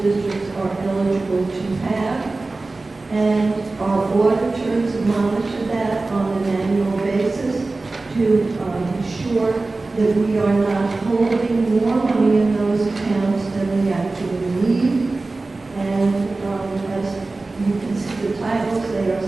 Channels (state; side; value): quieter; left; 3.4 dB